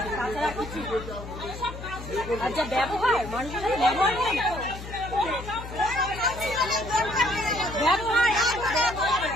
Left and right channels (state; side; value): noise; left; hum, 11 dB below the sound